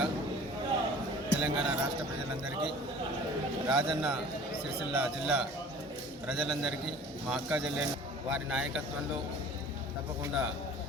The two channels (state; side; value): normal; both; correlation 0.46